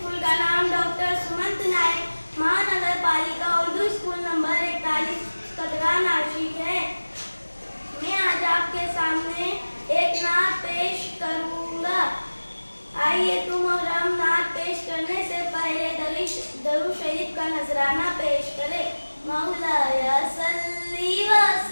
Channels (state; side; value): inverted; both; correlation -1.00